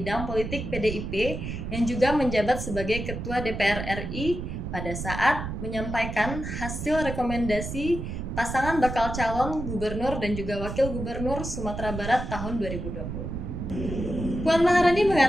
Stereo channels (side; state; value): right; noise; rumble, 6 dB below the sound